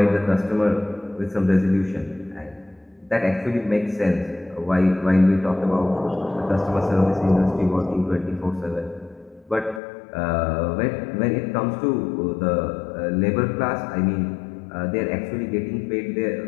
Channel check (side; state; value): right; drops out; at 9.8 s